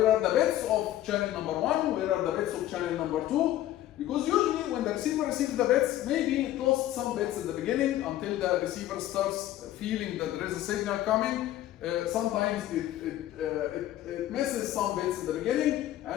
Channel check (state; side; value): quieter; right; 13.6 dB